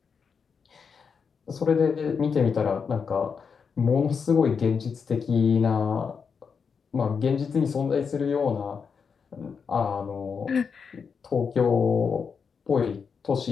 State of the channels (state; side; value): quieter; right; 6.0 dB